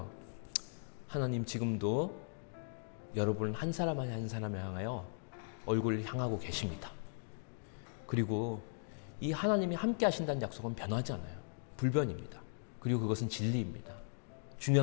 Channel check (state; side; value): silent; right; digital silence